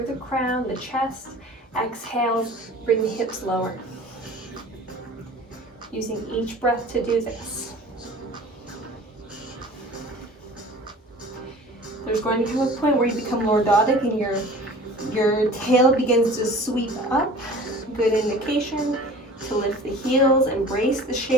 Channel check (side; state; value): both; normal; correlation 0.43